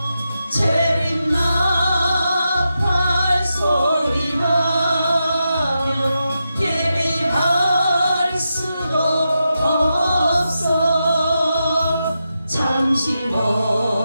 재림 나팔 소리 나며 예비할 수도 없어. 잠시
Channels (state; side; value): inverted; both; correlation -0.88